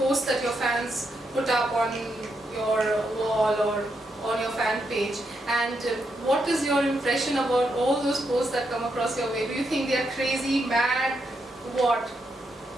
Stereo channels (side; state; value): both; normal; correlation 0.81